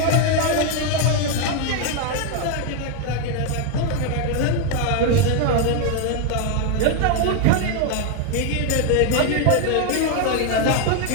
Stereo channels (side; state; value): both; different; correlation 0.01